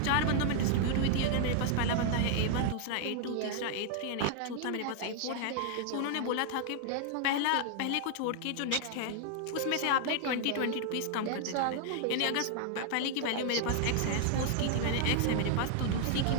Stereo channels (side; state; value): both; different; correlation 0.00